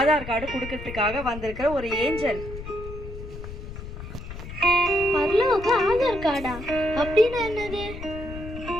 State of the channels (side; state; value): left; noise; rumble, 11 dB below the sound